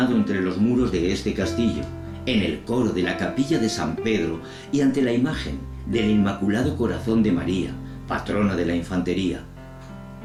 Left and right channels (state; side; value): identical; both; correlation 1.00